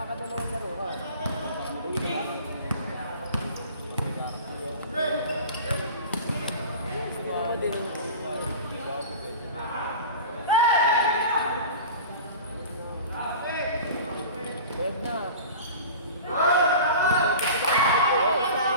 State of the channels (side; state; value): both; inverted; correlation -0.36